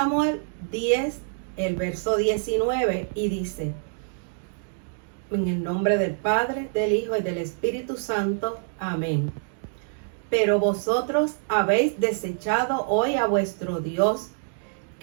10, el verso 19, y dice: en el nombre del Padre, del Hijo y del Espíritu Santo. Amén. Pero vosotros habéis desechado hoy a vuestro Dios,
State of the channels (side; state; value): left; silent; digital silence